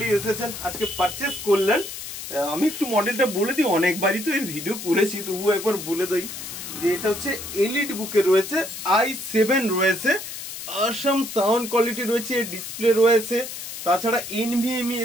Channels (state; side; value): noise; left; hiss, 9 dB below the sound